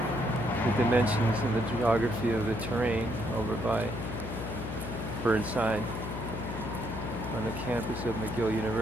the dimensions and the geography of the terrain over by Burnside on the campus of McGill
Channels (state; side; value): noise; left; hum, 6 dB below the sound